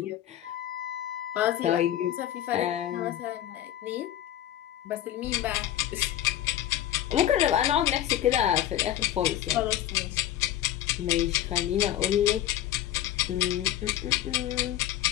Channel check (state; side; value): quieter; right; 12.4 dB